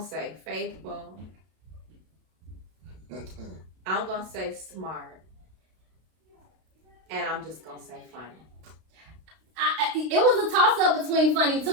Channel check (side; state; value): left; late; 32 ms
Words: faithful. I'm gonna say smart, and I'm just gonna say funny. It was a toss up between funny